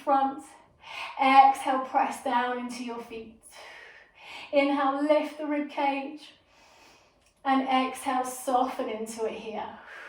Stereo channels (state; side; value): identical; both; correlation 1.00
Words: Exhale, press down into your feet. Inhale, lift the rib cage. And exhale, soften into it here.